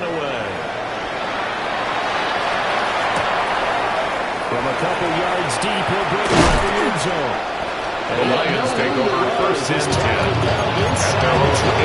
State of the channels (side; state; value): both; identical; correlation 1.00